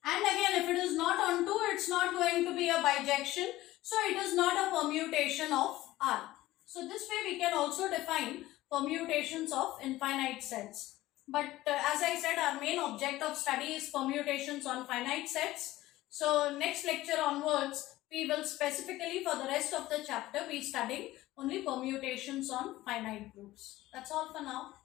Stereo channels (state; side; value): quieter; right; 16.6 dB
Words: And again, if it is not onto, it's not going to be a bijection. So it is not a permutation of R. So this way we can also define permutations of infinite sets. But as I said, our main object of study is permutations on finite sets. So next lecture onwards, we will specifically for the rest of the chapter be studying only permutations on finite groups. That's all for now.